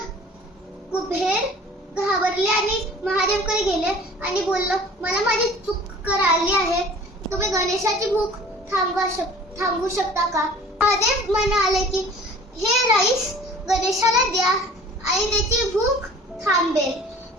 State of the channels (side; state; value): both; normal; correlation 0.46